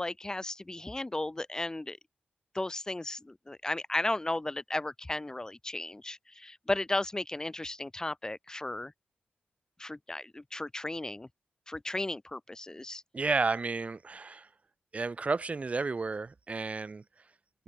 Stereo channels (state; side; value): normal; both; correlation 0.87